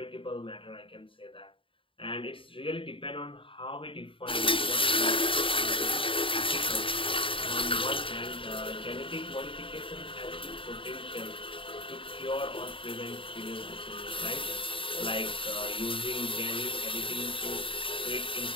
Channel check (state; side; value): late; right; 0.25 ms